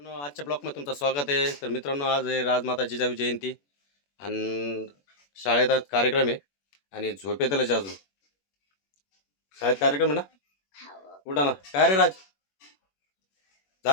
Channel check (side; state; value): right; late; 21 ms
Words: आजच्या ब्लॉगमध्ये तुमचं स्वागत आहे. तर मित्रांनो, आज आहे राजमाता जिजाऊ जयंती आणि शाळेत आज कार्यक्रम आहे आणि झोपेतलंच अजून शाळेत कार्यक्रम आहे ना. उठा ना. काय रे राज,